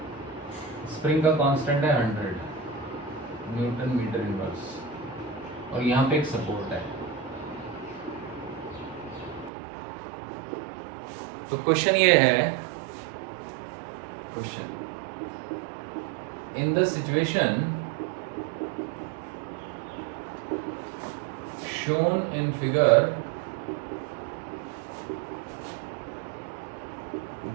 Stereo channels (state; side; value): drops out; left; at 9.5 s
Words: स्प्रिंग का कांस्टेंट है 100 न्यूटन मीटर इनवर्स, और यहां पे एक सपोर्ट है। तो क्वेश्चन ये है, question in the situation shown in figure,